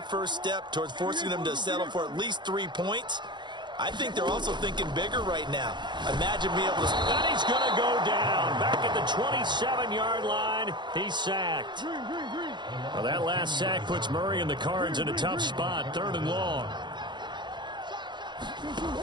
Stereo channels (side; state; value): left; late; 0.22 ms